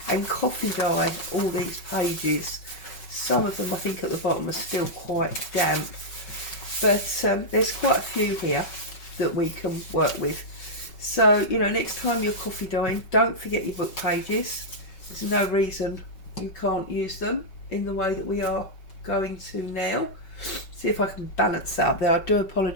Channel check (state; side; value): late; right; 5.3 ms